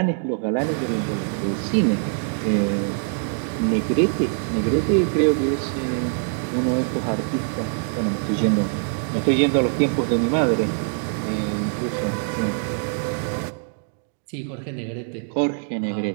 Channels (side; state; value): left; silent; digital silence